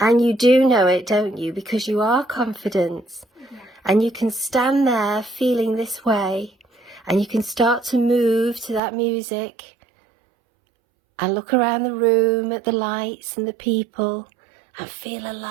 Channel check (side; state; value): left; drops out; at 8.8 s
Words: you do know it, don't you? Because you are confident. Yeah. And you can stand there feeling this way, and you can start to move to that music and look around the room at the lights and the people and feel